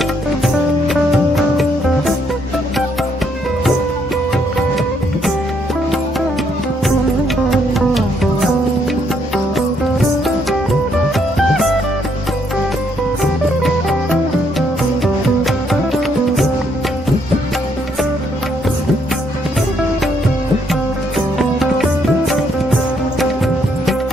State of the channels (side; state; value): both; normal; correlation 0.72